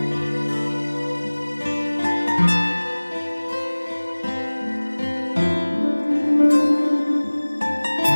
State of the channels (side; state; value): both; inverted; correlation -1.00